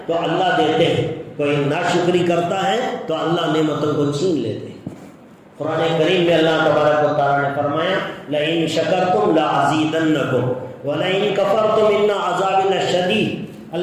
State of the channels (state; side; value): identical; both; correlation 1.00